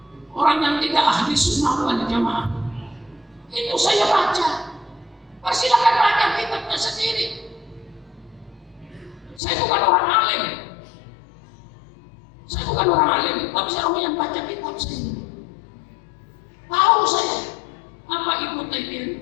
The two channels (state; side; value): drops out; right; at 9.4 s